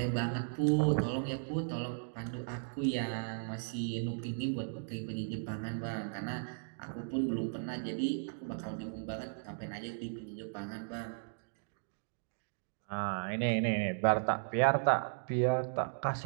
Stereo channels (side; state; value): left; silent; digital silence